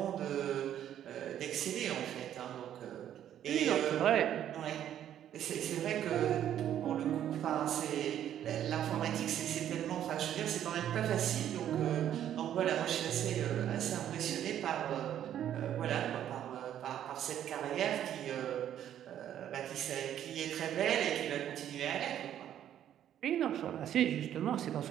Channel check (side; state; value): left; quieter; 10.7 dB